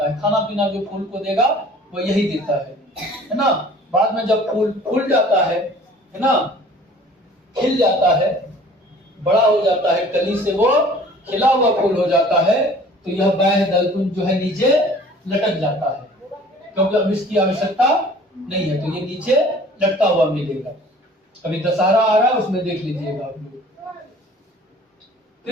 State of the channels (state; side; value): normal; both; correlation 0.49